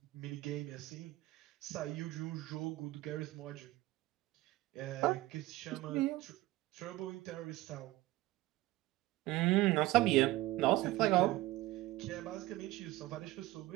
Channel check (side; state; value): left; quieter; 17.7 dB